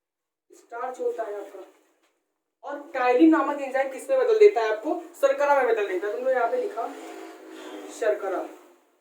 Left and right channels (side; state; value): both; identical; correlation 1.00